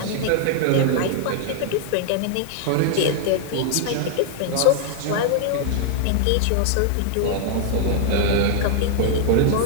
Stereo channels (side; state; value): both; different; correlation 0.00